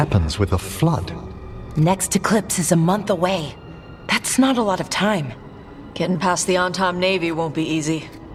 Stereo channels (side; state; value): both; identical; correlation 1.00